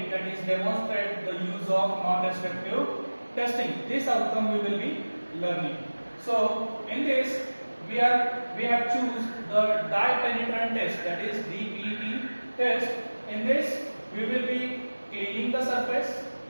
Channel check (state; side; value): inverted; both; correlation -1.00